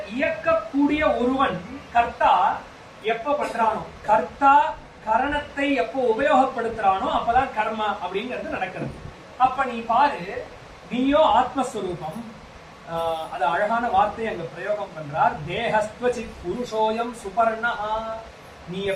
இயக்கக்கூடிய ஒருவன் கர்த்தா எப்ப பண்றானோ, கர்த்தா கரணத்தை எப்போ உபயோகப்படுத்துறானோ அப்பதான் கர்மா அப்படிங்கிறது நடக்கிறது. அப்ப நீ பாரு, நீயோ ஆத்மஸ்வரூபம். அது அழகான வார்த்தை அங்க பிரயோகம் பண்றார். தேஹஸ்த்வசித் புருஷோயம் சுபர்ணா. நீ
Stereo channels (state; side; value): identical; both; correlation 1.00